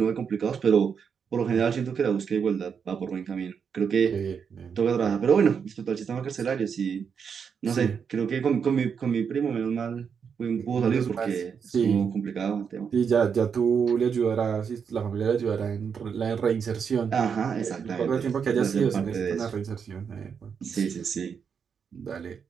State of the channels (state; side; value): quieter; left; 6.7 dB